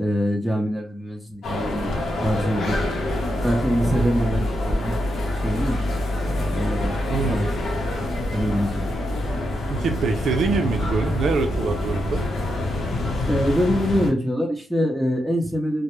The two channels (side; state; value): both; normal; correlation 0.84